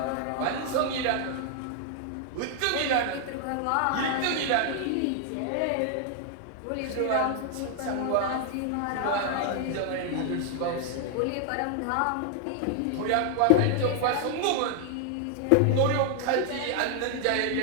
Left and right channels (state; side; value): different; both; correlation 0.00